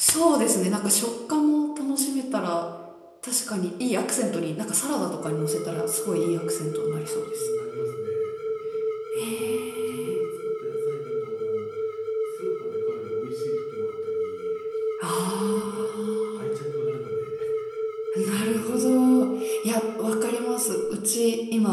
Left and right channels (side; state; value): both; identical; correlation 1.00